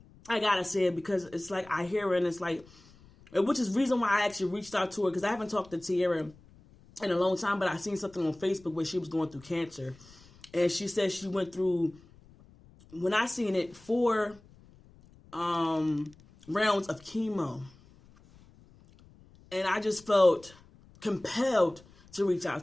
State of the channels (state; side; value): noise; left; rumble, 25 dB below the sound